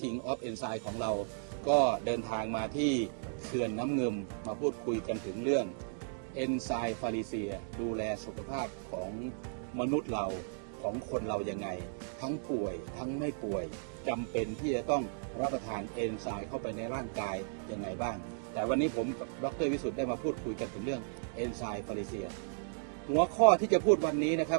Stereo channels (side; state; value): left; silent; digital silence